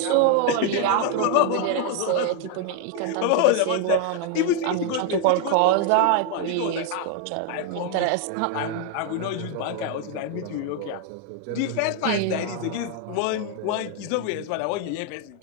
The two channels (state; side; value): different; both; correlation 0.01